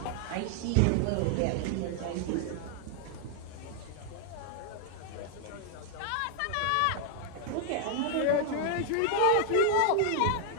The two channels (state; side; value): different; both; correlation 0.00